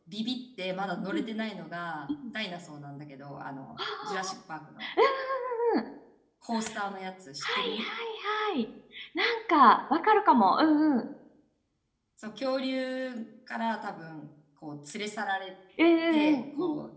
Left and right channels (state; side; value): identical; both; correlation 1.00